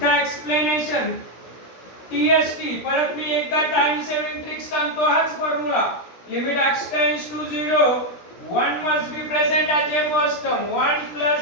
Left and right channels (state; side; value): late; right; 16 ms